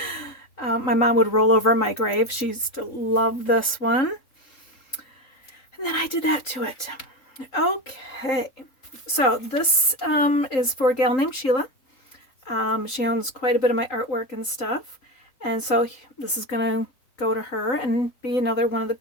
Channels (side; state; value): right; late; 3.8 ms